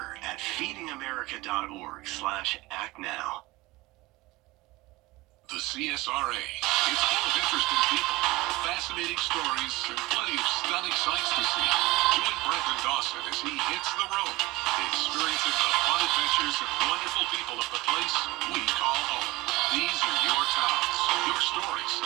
at feedingamerica.org/actnow. The CSRA. It's full of interesting people, fascinating stories, and plenty of stunning sights to see. Join Brendan Dawson as he hits the road, experiencing the fun adventures and wonderful people of the place we call home. These are your towns, your stories,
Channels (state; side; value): quieter; left; 20.7 dB